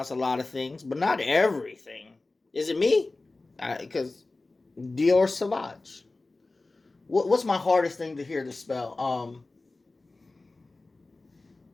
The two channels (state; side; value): quieter; right; 3.3 dB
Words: a lot of things, but not everything. Is it me? Because Dior Sauvage. What's my hardest thing to hear to spell?